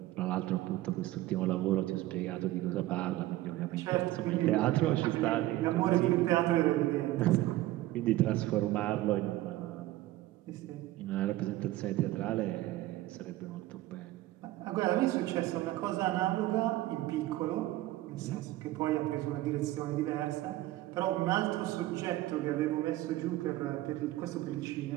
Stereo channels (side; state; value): left; quieter; 16.3 dB